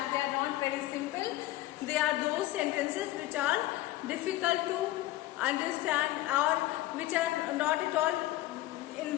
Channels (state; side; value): quieter; right; 16.3 dB